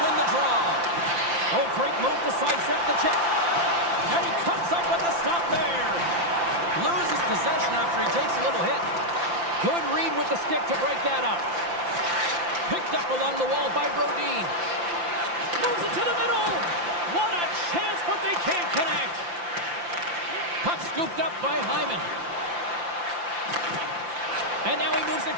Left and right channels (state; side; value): late; left; 5.8 ms